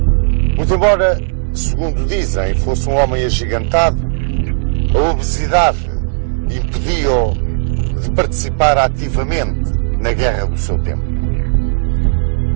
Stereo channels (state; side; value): silent; left; 63 dB below the other